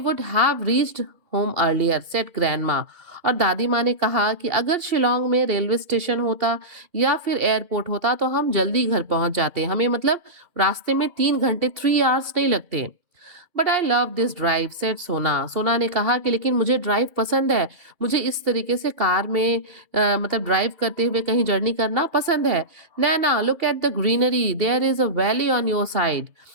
have reached home earlier said grandma. और दादी माँ ने कहा कि अगर शिलोंग में रेलवे स्टेशन होता या फिर एयरपोर्ट होता तो हम जल्दी घर पहुंच जाते. हमें मतलब रास्ते में 3 घंटे 3 hours नहीं लगते. But I love this drive set सोना. सोना ने कहा कि लेकिन मुझे ड्राइव पसंद है. मुझे इस तरीके से कार में मतलब ड्राइव करते हुए कहीं जर्नी करना पसंद है. Naina look at the greenery there is a valley on your side.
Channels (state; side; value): late; left; 2.8 ms